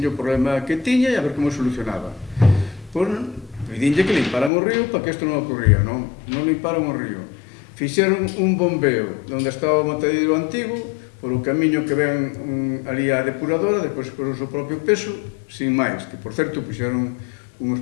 o problema que tiña e a ver como solucionaba. Pois pedinlle que limparan o río para que isto non ocurría, non? Non limparon o río. Fixeron un bombeo onde estaba o matadeiro antigo, por o camiño que ven ali a depuradora, depois por o seu propio peso, sin máis, que por certo puxeron uns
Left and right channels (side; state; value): right; drops out; at 4.5 s